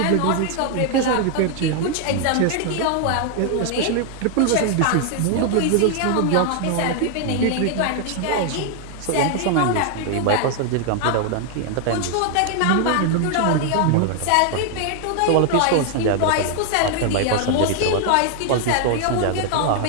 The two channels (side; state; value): both; different; correlation 0.00